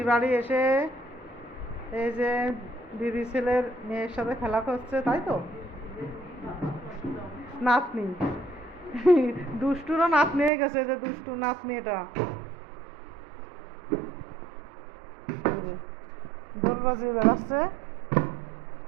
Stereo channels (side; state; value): left; drops out; at 10.5 s